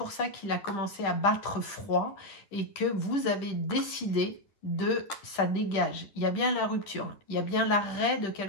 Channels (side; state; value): right; late; 10 ms